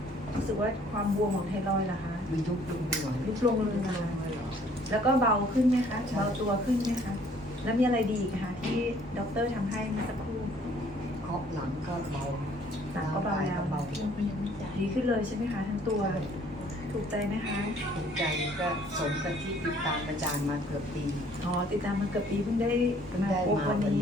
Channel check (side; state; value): both; normal; correlation 0.59